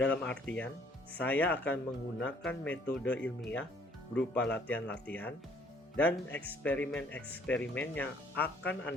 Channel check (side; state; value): both; normal; correlation 0.61